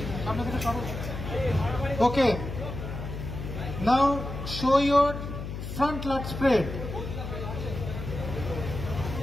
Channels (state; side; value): noise; left; hum, 7 dB below the sound